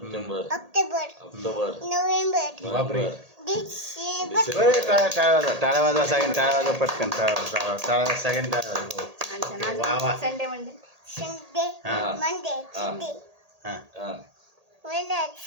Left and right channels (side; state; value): left; late; 1.8 ms